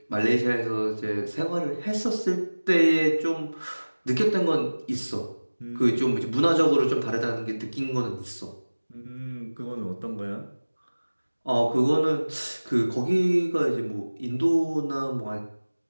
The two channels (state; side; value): inverted; both; correlation -1.00